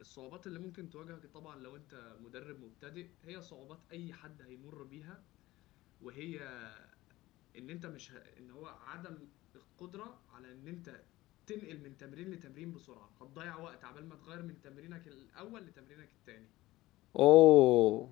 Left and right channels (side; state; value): right; quieter; 17.8 dB